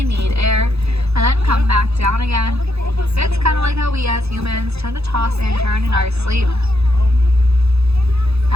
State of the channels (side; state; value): left; late; 0.79 ms